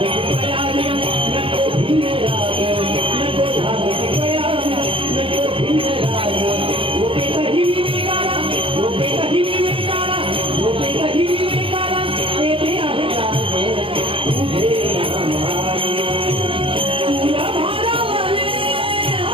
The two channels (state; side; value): late; left; 0.26 ms